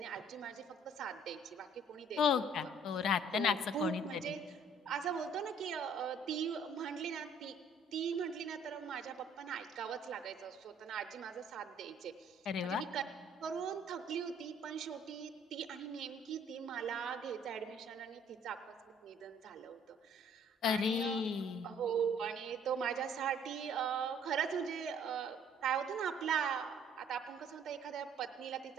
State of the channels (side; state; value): both; normal; correlation 0.58